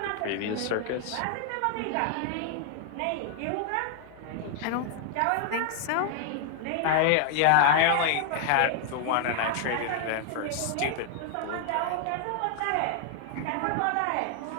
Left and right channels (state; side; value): different; both; correlation 0.00